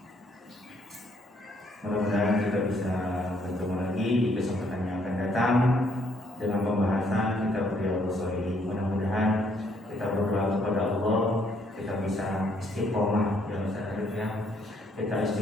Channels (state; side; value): normal; both; correlation 0.69